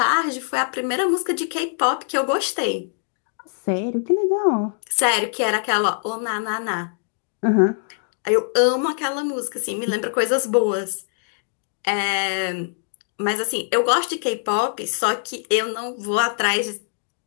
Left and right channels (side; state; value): right; silent; digital silence